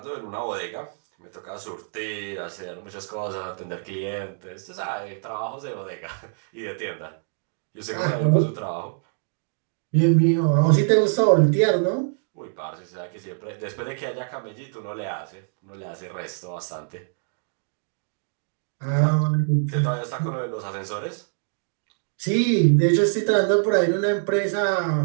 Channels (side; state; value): left; silent; digital silence